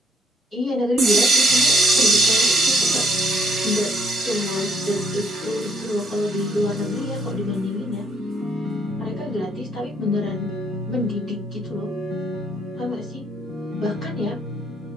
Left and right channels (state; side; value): normal; both; correlation 0.72